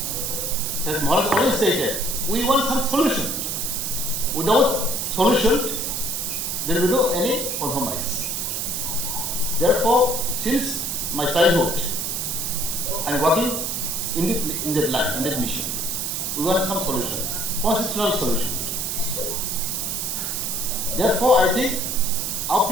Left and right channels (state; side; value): noise; right; hiss, 2 dB below the sound